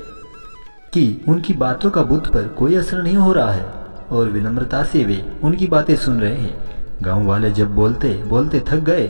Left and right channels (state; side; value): inverted; both; correlation -1.00